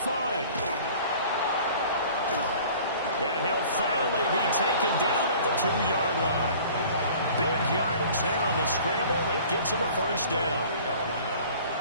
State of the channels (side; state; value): both; inverted; correlation -0.47